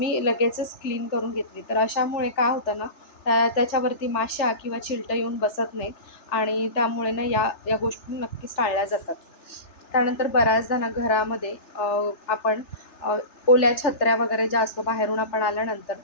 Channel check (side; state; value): right; late; 3.3 ms